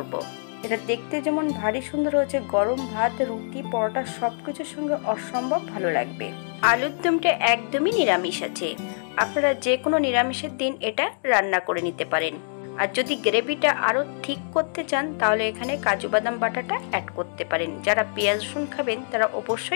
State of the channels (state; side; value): silent; right; digital silence